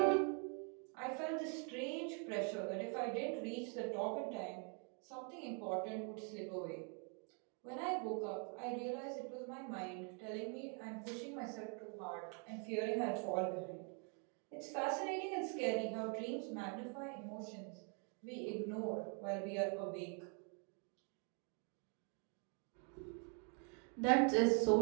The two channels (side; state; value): left; quieter; 39.5 dB